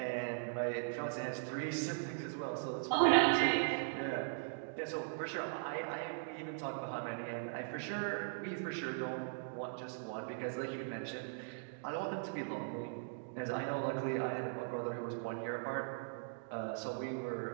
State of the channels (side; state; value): left; silent; digital silence